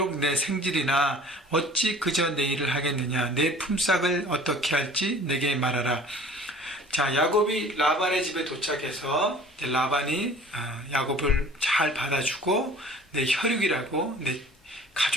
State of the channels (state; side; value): normal; both; correlation 0.47